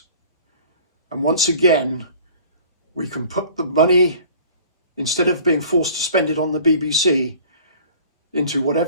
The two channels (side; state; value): both; inverted; correlation -0.47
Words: And once again, we can put the money, instead of being forced to spend it on the BBC, into